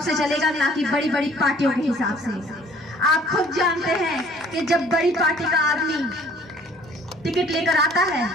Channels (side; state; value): both; normal; correlation 0.55